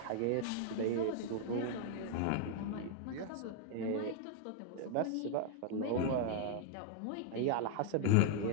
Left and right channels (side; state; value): both; different; correlation 0.00